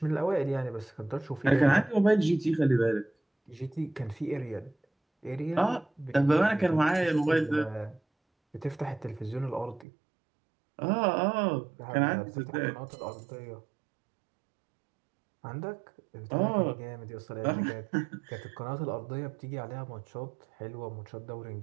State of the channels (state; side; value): drops out; left; at 9.9 s